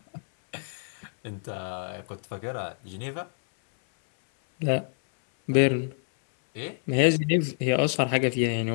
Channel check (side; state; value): right; silent; 58 dB below the other